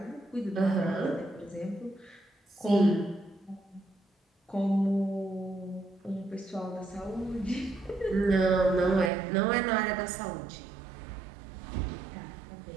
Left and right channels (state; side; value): drops out; left; at 9.1 s